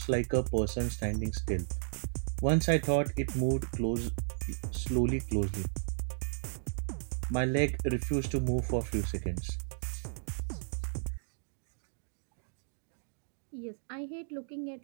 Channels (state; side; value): silent; left; digital silence